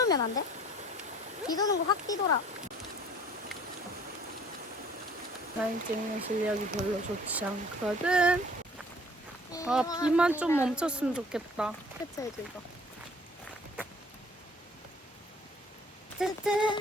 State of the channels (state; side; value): normal; both; correlation 0.53